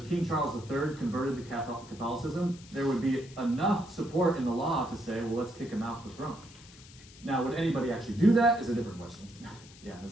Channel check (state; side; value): noise; left; hiss, 21 dB below the sound